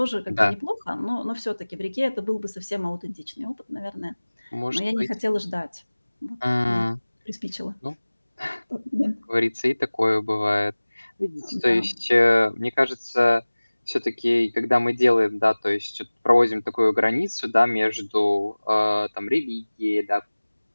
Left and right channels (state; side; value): inverted; both; correlation -1.00